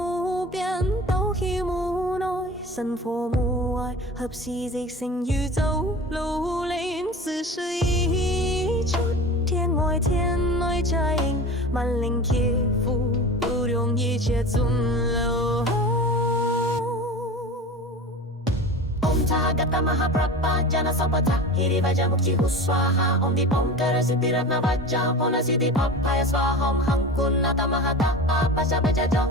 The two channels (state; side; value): normal; both; correlation 0.33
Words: 边斗气目内，神佛目外，合时即成宇宙路连，四时一出，天外天内在应，万灵贴符，不容一切尊流。Gata Mahaprabha Jana Sampata Hiri Vaja Mukti Huswaha Om Dipom Kara Siddhi Ratna Vaja Pona Siddhi Papaya Swaham Hankun Nata Mahata Pasha Baja Jo